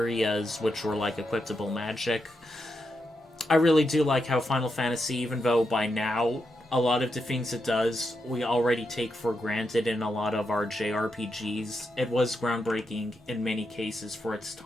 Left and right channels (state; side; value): normal; both; correlation 0.84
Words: which were like equipable magic. I really do like how Final Fantasy, even though by now a lot of the things it does we already take for granted in a lot of our JRPGs, it was groundbreaking in many cases for its